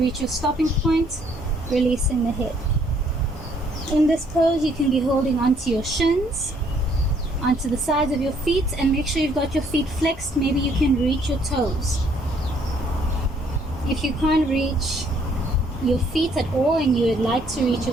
your stopping point, releasing the head. In this pose, you can be holding onto your shins, onto the sides of your feet, and make sure you've got your feet flexed. Maybe you can reach your toes. If you can't reach your feet at all and you would like to reach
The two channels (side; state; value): both; normal; correlation 0.65